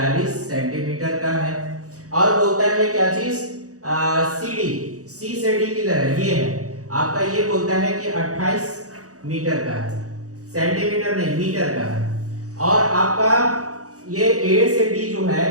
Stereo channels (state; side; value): late; left; 0.66 ms